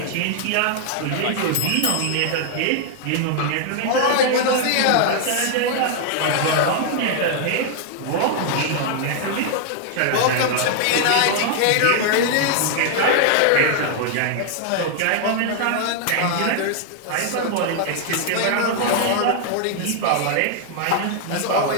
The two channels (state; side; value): different; both; correlation 0.00